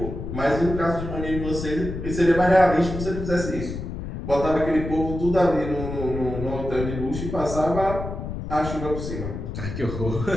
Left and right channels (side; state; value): left; noise; rumble, 6 dB below the sound